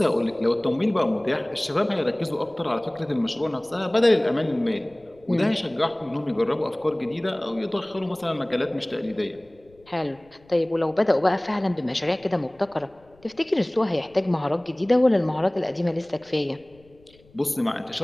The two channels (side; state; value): left; noise; rumble, 29 dB below the sound